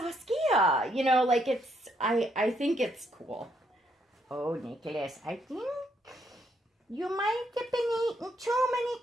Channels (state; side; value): normal; both; correlation 0.74